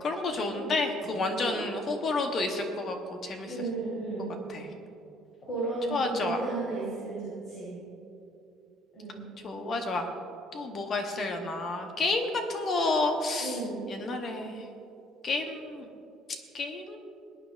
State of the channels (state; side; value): normal; both; correlation 0.62